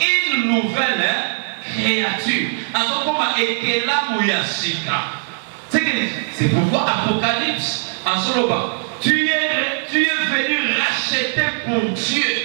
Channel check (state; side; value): silent; left; 61 dB below the other